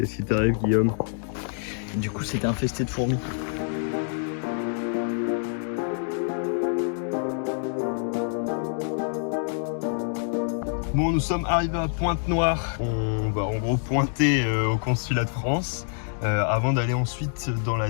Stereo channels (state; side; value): silent; right; digital silence